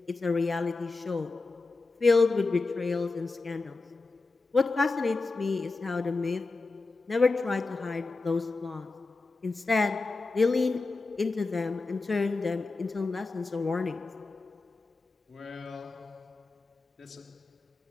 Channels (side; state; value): right; quieter; 3.7 dB